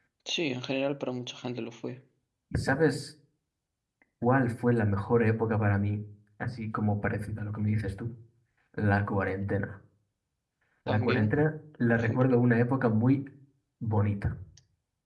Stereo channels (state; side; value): identical; both; correlation 1.00